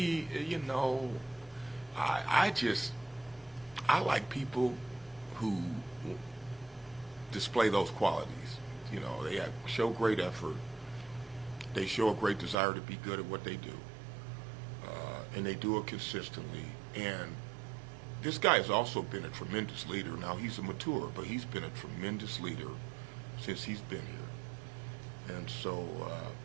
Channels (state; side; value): drops out; left; at 12.6 s